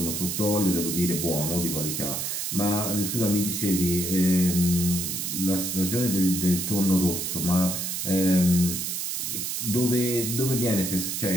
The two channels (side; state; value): right; noise; hiss, 2 dB below the sound